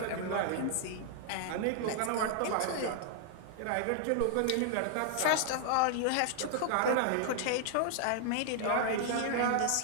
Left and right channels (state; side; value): different; both; correlation 0.00